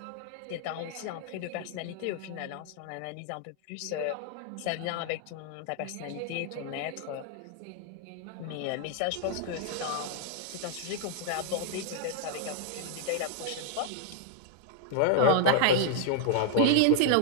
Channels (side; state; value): both; different; correlation 0.00